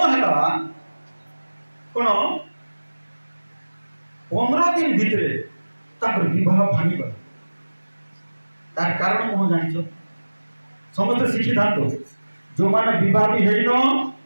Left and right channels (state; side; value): inverted; both; correlation -1.00